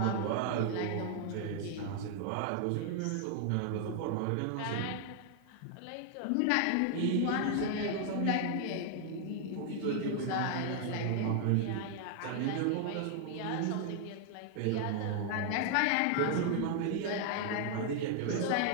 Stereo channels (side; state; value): both; different; correlation 0.00